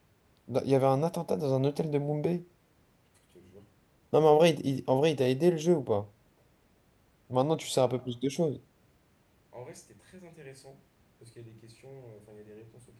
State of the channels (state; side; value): identical; both; correlation 1.00